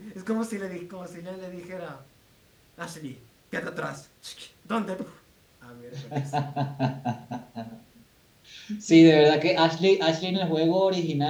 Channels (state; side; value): identical; both; correlation 1.00